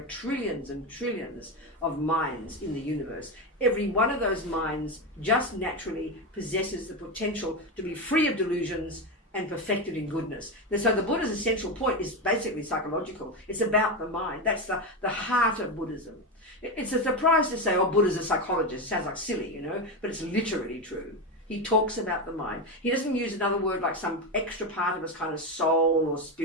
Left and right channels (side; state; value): both; normal; correlation 0.14